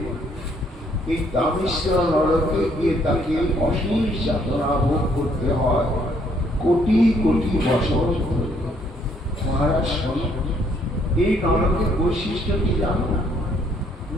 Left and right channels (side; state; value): both; normal; correlation 0.67